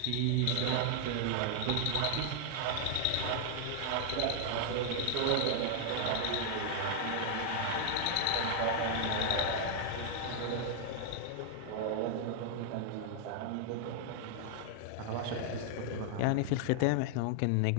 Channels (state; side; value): different; both; correlation -0.01